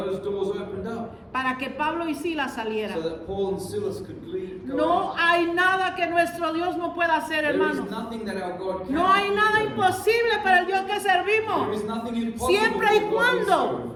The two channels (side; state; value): both; identical; correlation 1.00